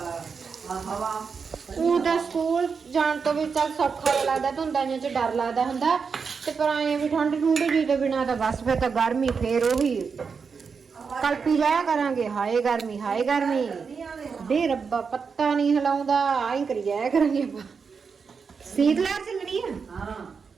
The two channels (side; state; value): left; quieter; 5.6 dB